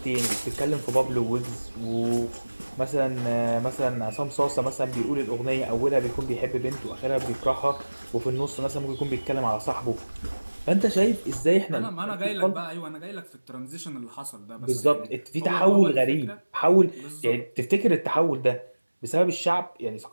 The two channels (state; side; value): inverted; both; correlation -1.00